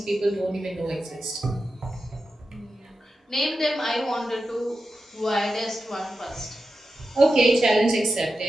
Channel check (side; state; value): both; normal; correlation 0.91